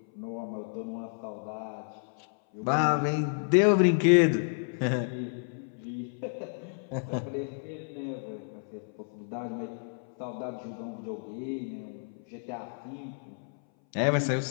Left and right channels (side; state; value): right; silent; 57 dB below the other